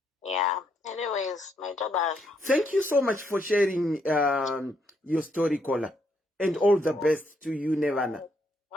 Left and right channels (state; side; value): normal; both; correlation 0.75